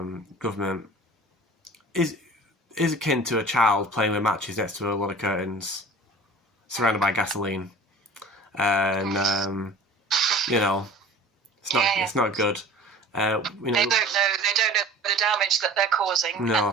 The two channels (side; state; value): both; normal; correlation 0.42